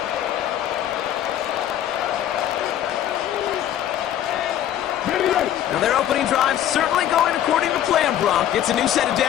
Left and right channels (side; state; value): right; quieter; 11.3 dB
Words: Now their opening drive certainly going according to plan, Brock. It's a new set of